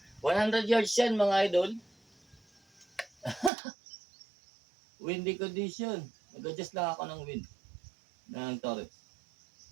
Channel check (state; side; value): drops out; left; at 3.5 s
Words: 100 yards yan mga idol. Windy condition. Nag-adjust lang ako ng wind. Ng torrent.